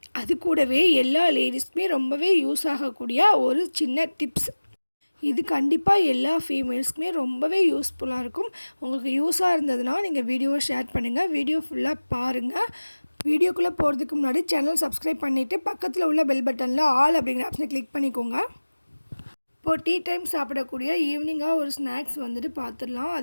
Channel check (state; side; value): inverted; both; correlation -1.00